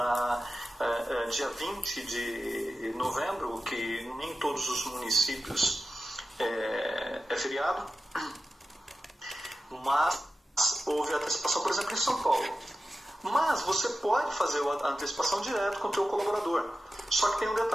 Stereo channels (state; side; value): normal; both; correlation 0.93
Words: dia 20 de novembro, que nem todos os municípios é feriado, mas houve antecipação, por exemplo, em São Paulo. Mas você pode fazer a antecipação direto com o teu colaborador. Só que tem um